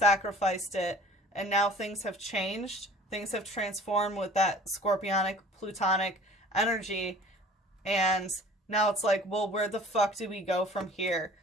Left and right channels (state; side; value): normal; both; correlation 0.47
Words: it, and now things have changed. Things have transformed with that scorpionic, plutonic energy, and now it's like, well, where the fuck do we go from here?